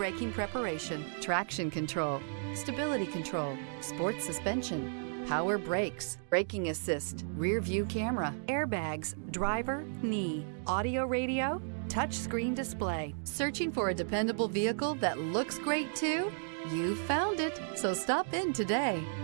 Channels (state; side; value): silent; left; digital silence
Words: preparation, traction control, stability control, sports suspension, power brakes, braking assist, rear view camera, airbags, driver, knee, audio radio, touchscreen display. Searching for a dependable vehicle that looks great too? You found it, so stop in today.